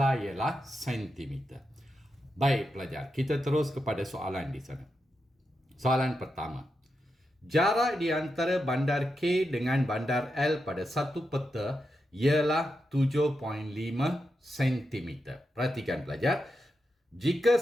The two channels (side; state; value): both; normal; correlation 0.87